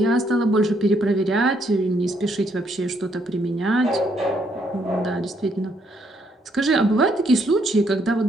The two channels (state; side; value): normal; both; correlation 0.72